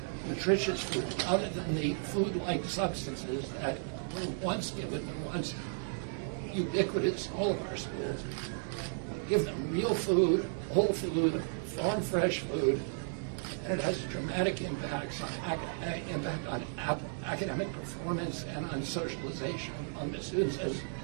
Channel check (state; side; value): silent; left; digital silence